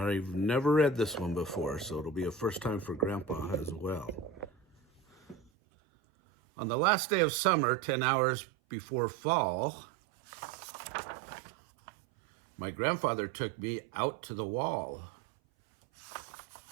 never read this one before, so it'll be a first time for Grandpa as well. On the last day of summer, 10 hours before fall, my grandfather took me out to the wall.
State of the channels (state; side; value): drops out; left; at 5.5 s